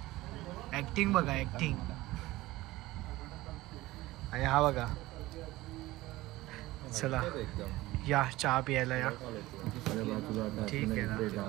ॲक्टिंग बघा, ॲक्टिंग. आणि हा बघा, चला या चहा प्यायला या. ठीक आहे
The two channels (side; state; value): left; quieter; 18.3 dB